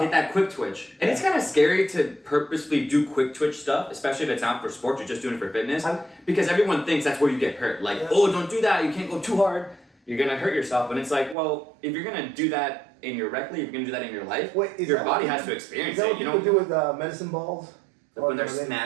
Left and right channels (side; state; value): left; drops out; at 11.4 s